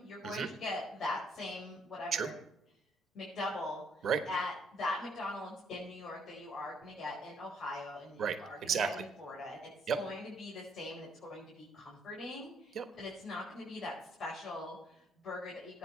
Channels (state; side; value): normal; both; correlation 0.68